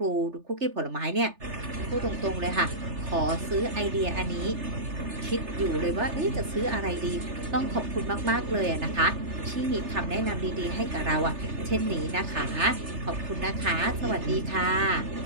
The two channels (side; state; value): left; late; 3.3 ms